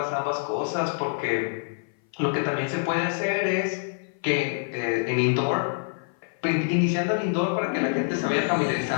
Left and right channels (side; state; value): right; silent; 57 dB below the other